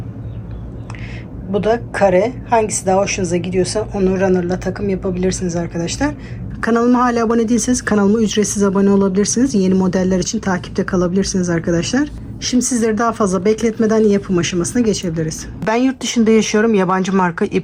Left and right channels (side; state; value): both; identical; correlation 1.00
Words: Bu da kare. Hangisi daha hoşunuza gidiyorsa onu runner'la takım yapabilirsiniz arkadaşlar. Kanalıma hala abone değilseniz kanalıma ücretsiz abone olabilirsiniz. Yeni modeller için takipte kalabilirsiniz arkadaşlar. Şimdi sizleri daha fazla bekletmeden yapım aşamasına geçebiliriz. Ben yurt dışında yaşıyorum. Yabancı marka